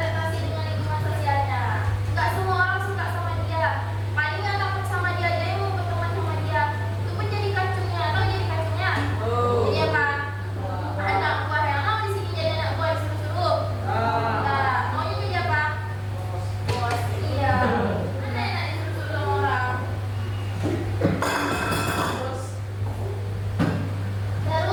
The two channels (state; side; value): identical; both; correlation 1.00